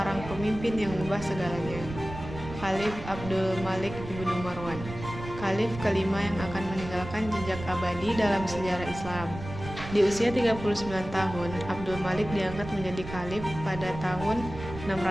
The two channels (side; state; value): right; noise; rumble, 11 dB below the sound